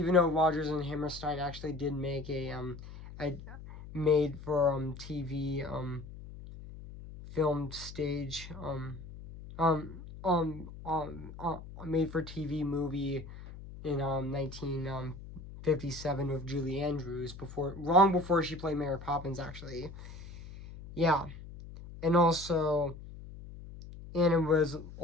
though Rodgers and Hammerstein actually did make a made for TV filmed stage made for TV movie in 1957 with Julie Andrews long before she played Mary Poppins actually. Yeah. And it was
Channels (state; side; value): noise; left; hum, 14 dB below the sound